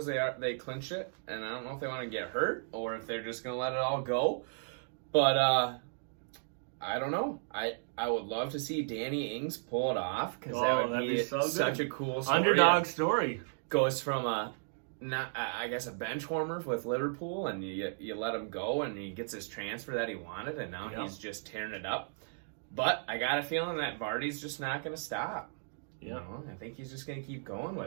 they clinch it, and I don't know if they want to get hurt or if they're just going to let it all go. But I don't know. I would love to see Danny Ings pull it off because that would be such a cool story. Underdog story. Goes from a bench warmer with Liverpool, and you let him go, and he gets his transfer that he wanted, and now he's just tearing it up. But I got a feeling that Vardy's just not going to stop. Yeah, you know, I think he's just going to keep going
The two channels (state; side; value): silent; left; digital silence